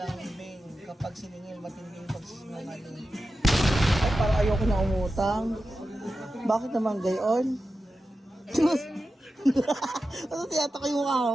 Kapag siningil, matinding pagsisinungaling. Ay, parang ayoko na umutang. Bakit naman gayon? Ano tiyatak yung mukha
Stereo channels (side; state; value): both; normal; correlation 0.92